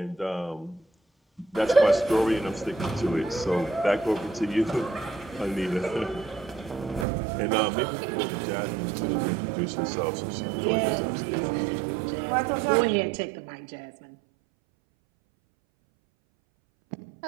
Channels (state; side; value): drops out; left; at 7.1 s